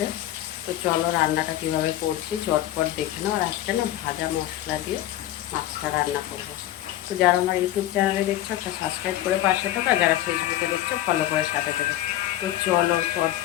তো চলো রান্নাটা কীভাবে করছি চটপট দেখে নাও। আর আজকে না ভাজা মশলা দিয়ে মাছটা রান্না করবো। তো যারা আমার ইউটিউব চ্যানেলে দেখছো একটা সাবস্ক্রাইব করে পাশে থাকো, আর যারা ফেসবুকে দেখছো ফলো করে সাথে থেকে। তো চলো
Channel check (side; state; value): right; quieter; 13.9 dB